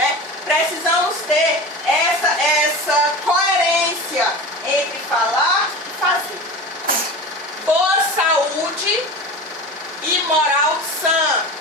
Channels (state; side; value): normal; both; correlation 0.31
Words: Precisamos ter essa coerência entre falar e fazer. Boa saúde e moral sã